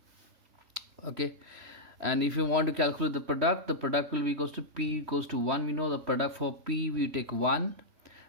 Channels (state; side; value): late; left; 3.1 ms